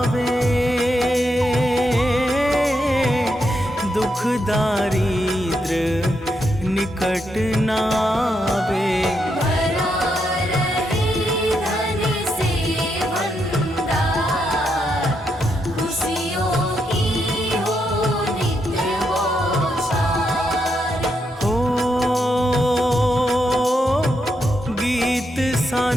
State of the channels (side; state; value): both; normal; correlation 0.81